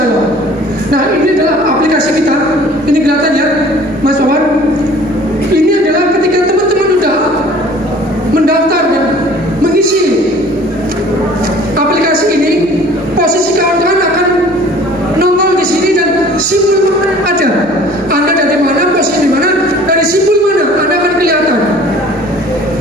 Nah, ini adalah aplikasi kita. Ini kelihatan ya, Mas Wawan. Ini adalah ketika teman-teman sudah mendaftar dan mengisi aplikasi ini, posisi kawan-kawan akan nongol di sini dan simbol ada. Anda dari mana, posisi di mana, dari simbol mana, Anda akan kelihatan.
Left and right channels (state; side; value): normal; both; correlation 0.49